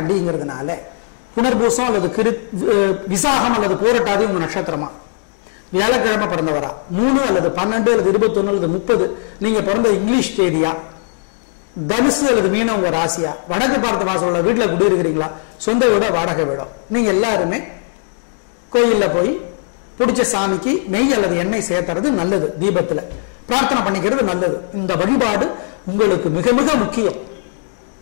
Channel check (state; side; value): silent; right; 68 dB below the other